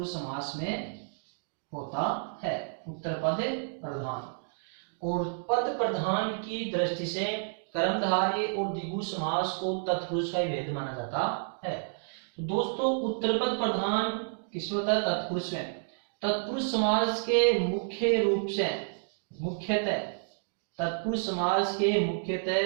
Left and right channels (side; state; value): left; silent; digital silence